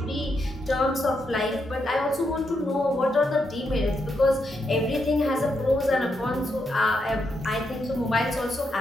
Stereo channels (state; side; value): normal; both; correlation 0.81